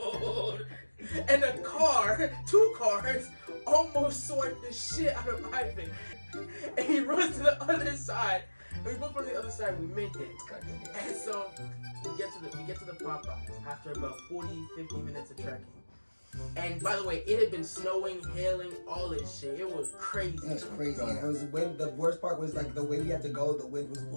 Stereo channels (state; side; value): inverted; both; correlation -1.00